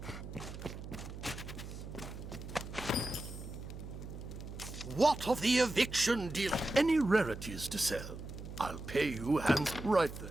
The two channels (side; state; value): right; noise; hum, 10 dB below the sound